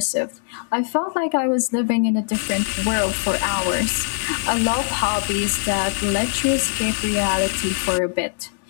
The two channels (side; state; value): right; silent; digital silence